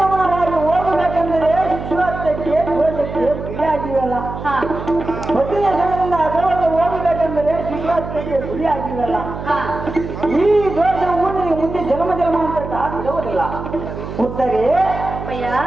ಹೋಗಬೇಕೆಂದರೆ ಶಿಶುಹತ್ಯಕ್ಕೆ ದೋಷಕ್ಕೆ ಗುರಿಯಾಗಿವಲ್ಲ. ಪತಿಯ ಹೆಸರಿನಿಂದ ಅಸವಾದ ಹೋಗಬೇಕೆಂದರೆ ಶಿಶುಹತ್ಯಕ್ಕೆ ಗುರಿಯಾಗಿವಲ್ಲ. ಈ ದೋಷವು ನಿನಗೆ ಮುಂದೆ ಜನ್ಮ ಜನ್ಮಾಂತರ ಬಿಡುವುದಿಲ್ಲ. ಉತ್ತರೆ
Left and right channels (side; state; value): right; noise; hum, 8 dB below the sound